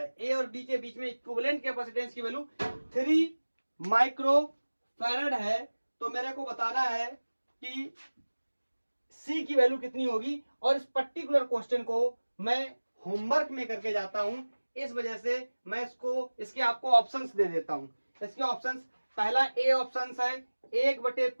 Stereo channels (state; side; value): inverted; both; correlation -1.00